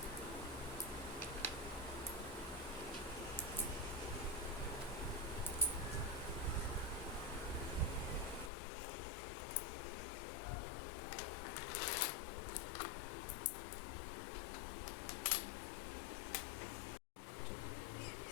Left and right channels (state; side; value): drops out; right; at 8.5 s